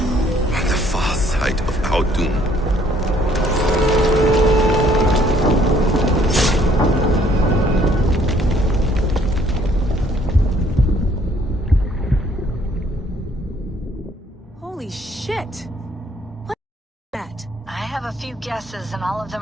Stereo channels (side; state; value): both; normal; correlation 0.62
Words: the far side of our doom. few guesses and all of